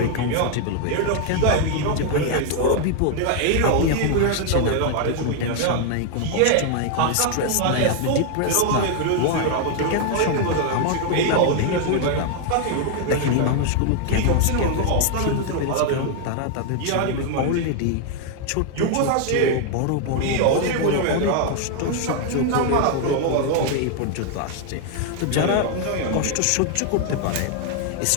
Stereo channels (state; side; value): different; both; correlation 0.00